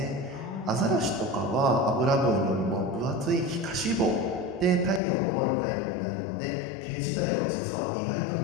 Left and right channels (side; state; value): right; drops out; at 5.0 s